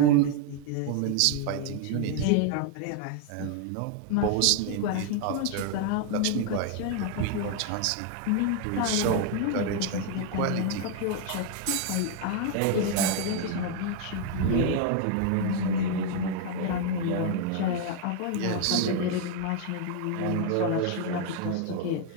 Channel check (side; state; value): both; different; correlation 0.00